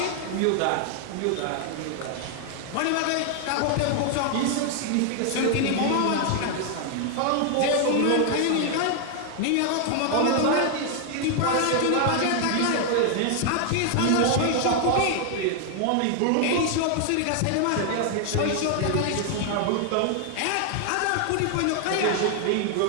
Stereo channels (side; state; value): both; different; correlation 0.00